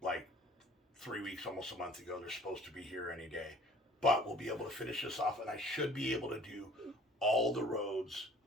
like 3 weeks, almost a month ago. They're supposed to be here any day. But we'll be able to finish this off, and I should be able to do all the roads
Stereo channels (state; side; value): normal; both; correlation 0.52